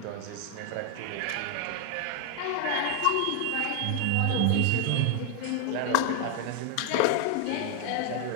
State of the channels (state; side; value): different; both; correlation 0.00